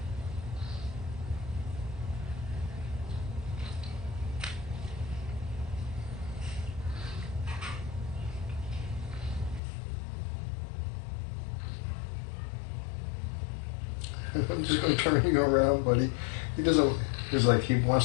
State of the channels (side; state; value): right; drops out; at 9.6 s